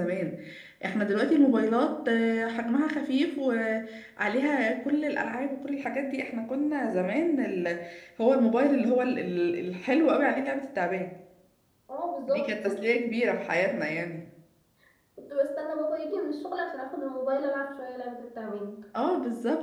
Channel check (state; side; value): identical; both; correlation 1.00